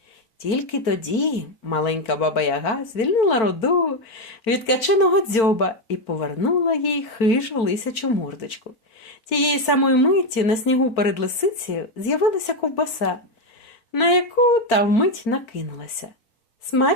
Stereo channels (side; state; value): right; late; 4.4 ms